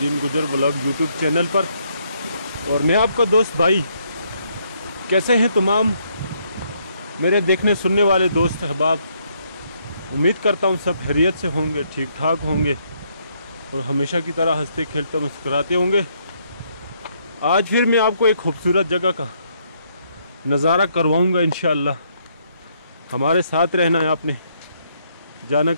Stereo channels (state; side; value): inverted; both; correlation -0.72